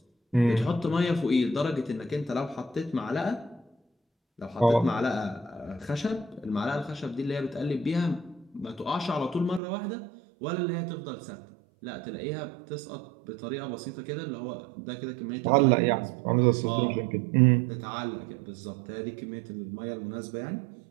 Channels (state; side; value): drops out; left; at 9.6 s